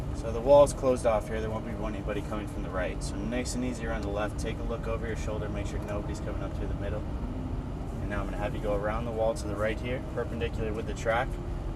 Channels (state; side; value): identical; both; correlation 1.00